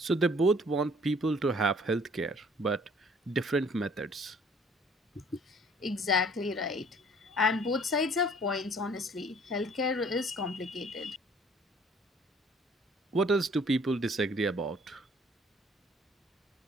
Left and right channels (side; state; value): both; normal; correlation 0.57